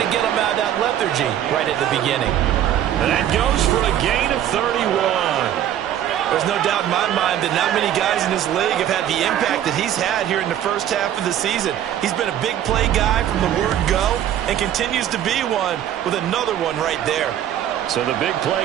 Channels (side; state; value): left; quieter; 11.1 dB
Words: to get them out of that lethargy right at the beginning. And that goes for a gain of 31. There's no doubt in my mind that not many guys in this league have had the impact that he's had here in the first half of the season. He's been a big play guy from the word go and continues to be one with another one right there. So the big play